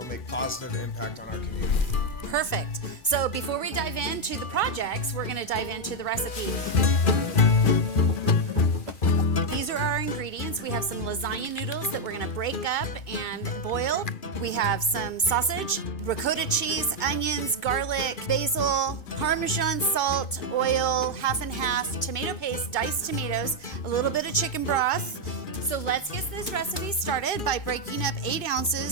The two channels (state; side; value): late; right; 2.4 ms